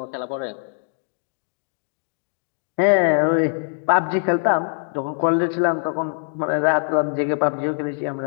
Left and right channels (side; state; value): right; silent; 64 dB below the other